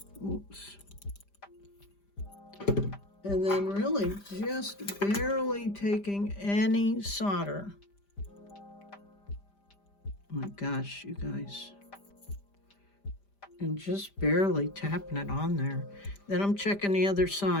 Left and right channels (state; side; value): late; right; 5.0 ms